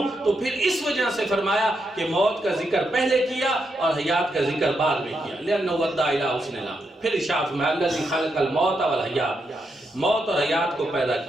تو پھر اس وجہ سے فرمایا کہ موت کا ذکر پہلے کیا اور حیات کا ذکر بعد میں کیا، لأنہ ادى الی حسن العمل۔ پھر ارشاد میں الذی خلق الموت والحیات، موت اور حیات کو پیدا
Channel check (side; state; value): both; normal; correlation 0.82